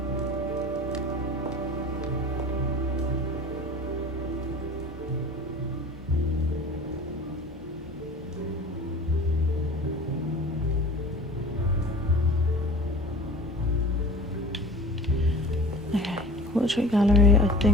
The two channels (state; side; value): normal; both; correlation 0.40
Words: Portrait gallery, I